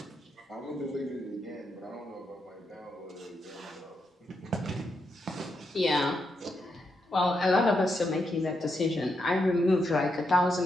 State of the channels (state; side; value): normal; both; correlation 0.83